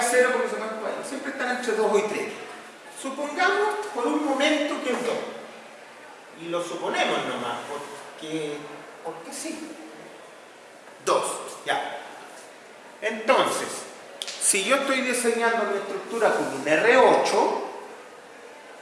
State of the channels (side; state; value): both; identical; correlation 1.00